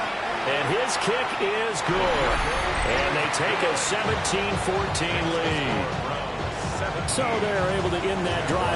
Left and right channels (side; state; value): both; identical; correlation 1.00